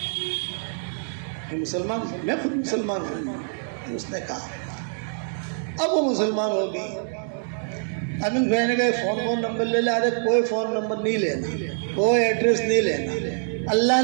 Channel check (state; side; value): silent; left; digital silence